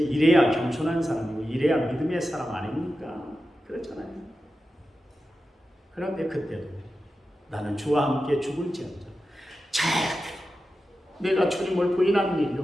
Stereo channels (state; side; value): normal; both; correlation 0.92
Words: 이래야 겸손한 사람이고 이래야 믿음의 사람 아닙니까? 그렇잖아요. 그런데 그때도 나는 주와 함께 죽을지언정 절대 내가 주님을 부인하는 일이